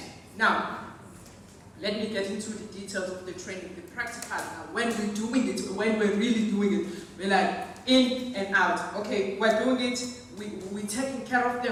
now, let me get into the details of the training, the practical. Now, when we're doing it, when we're really doing it, we're like in and out. Okay, we're doing it, we're taking care of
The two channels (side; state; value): both; identical; correlation 1.00